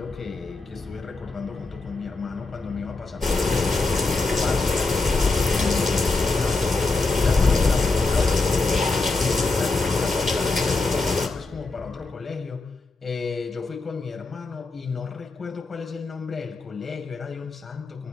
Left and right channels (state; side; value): quieter; right; 3.5 dB